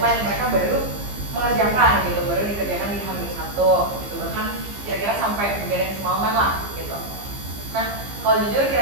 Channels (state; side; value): late; left; 15 ms